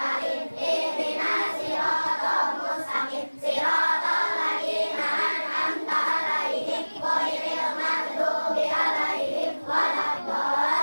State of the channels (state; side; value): inverted; both; correlation -1.00